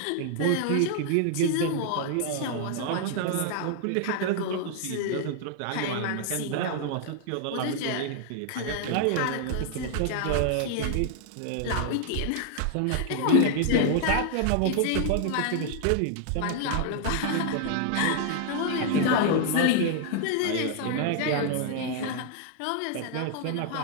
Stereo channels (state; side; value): different; both; correlation 0.00